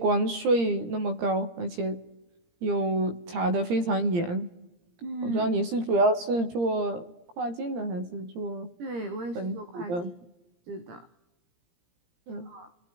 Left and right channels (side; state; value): left; late; 17 ms